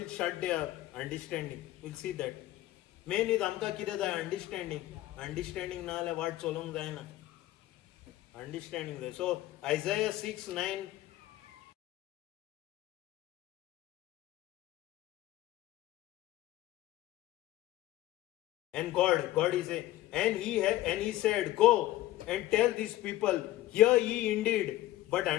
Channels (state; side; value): quieter; right; 15.5 dB